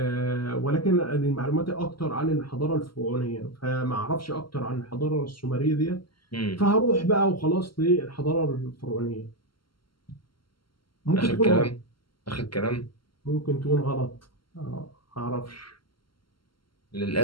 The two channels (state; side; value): late; right; 0.73 ms